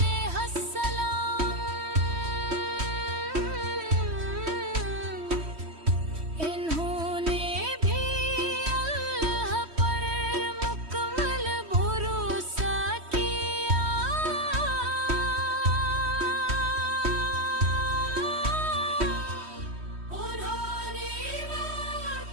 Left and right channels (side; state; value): left; late; 3.1 ms